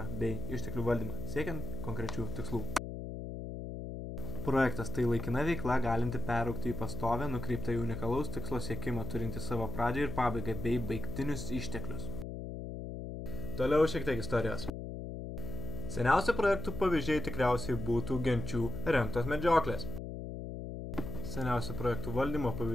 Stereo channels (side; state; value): left; noise; hum, 6 dB below the sound